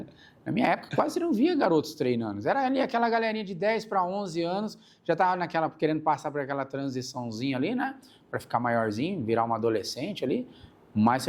Na minha época, quase não via garotos treinando. Era ali aquela galerinha de 10 para 11 anos, já estava querendo passar por aquela transiçãozinha ali, né? Para ficar maiorzinho, virar uma adolescente ali. Mas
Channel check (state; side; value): identical; both; correlation 1.00